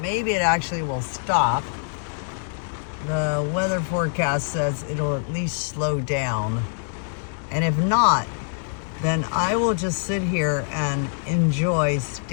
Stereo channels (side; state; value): right; silent; digital silence